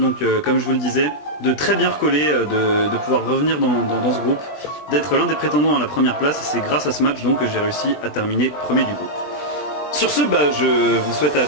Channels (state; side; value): late; right; 20 ms